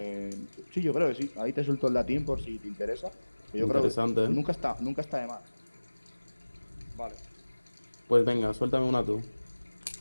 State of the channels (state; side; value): inverted; both; correlation -1.00